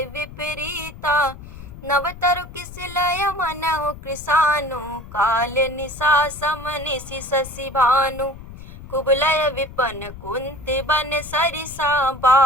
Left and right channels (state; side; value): noise; left; rumble, 15 dB below the sound